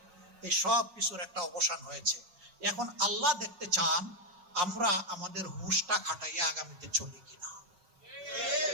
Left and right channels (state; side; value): late; left; 5.5 ms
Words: এই সব কিছুর একটা অবসান হয়েছে। এখন আল্লাহ দেখতে চান আমরা আমাদের হুঁশটা খাটাইয়া আগামীতে চলি কিনা।